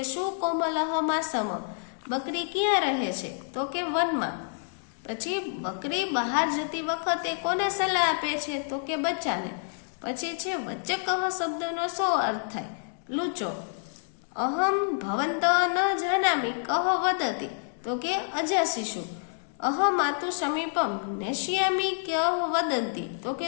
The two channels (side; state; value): right; silent; digital silence